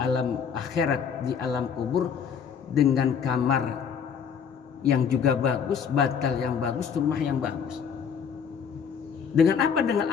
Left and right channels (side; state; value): right; quieter; 7.0 dB